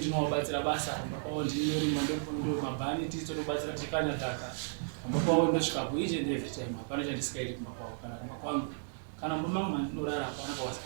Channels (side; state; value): left; silent; digital silence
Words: basa, pamba pawo ndinorima ndo mabhani tisu tonobatsira tikanya dhaka, pamba pawo ndosvika ku each and every time. Hapana chandisingaiti kumba pawo kana kumba kwangu kana mumba mangu mandinorara hapana